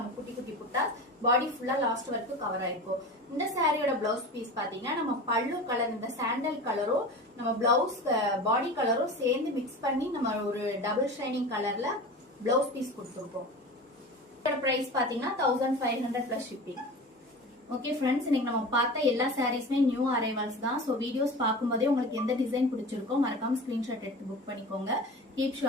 குட்டி குட்டி புட்டா பாடி ஃபுல்லா லாஸ்ட் வரைக்கும் கவர் ஆயிருக்கும். இந்த சாரியோட பிளவுஸ் பீஸ் பாத்தீங்கன்னா நம்ம பல்லு கலர் இந்த சாண்டல் கலரும் நம்ம பிளவுஸ் பாடி கலரும் சேர்ந்து மிக்ஸ் பண்ணி நம்ம ஒரு டபுள் ஷைனிங் கலர்ல பிளவுஸ் பீஸ் கொடுத்துருக்கோம். பிரைஸ் பாத்தீங்கன்னா 1500 பிளஸ் ஷிப்பிங். ஓகே ஃப்ரெண்ட்ஸ், இன்னைக்கு நம்ம பார்த்த எல்லா சாரீஸ்மே நியூ அரைவல்ஸ் தான். ஸோ வீடியோஸ் பார்க்கும்போதே உங்களுக்கு எந்த டிசைன் பிடிச்சிருக்கோ மறக்காம ஸ்கிரீன்ஷாட் எடுத்து புக் பண்ணிக்கோங்க. Keep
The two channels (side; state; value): both; normal; correlation 0.33